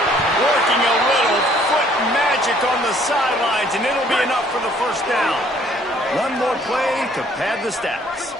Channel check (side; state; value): both; normal; correlation 0.61